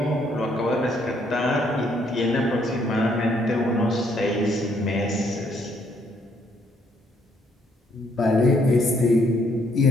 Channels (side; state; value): both; normal; correlation 0.69